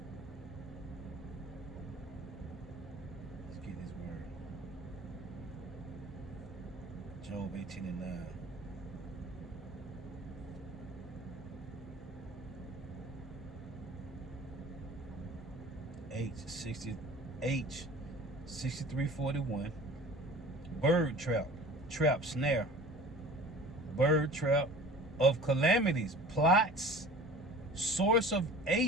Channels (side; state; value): both; normal; correlation 0.43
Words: Let's get this word. Job 18:9. H 6341. Bird trap. Trap, snare. Bird trap of calamities, plots, source of